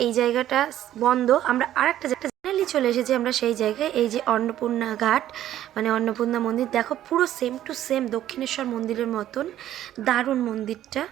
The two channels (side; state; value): left; quieter; 12.4 dB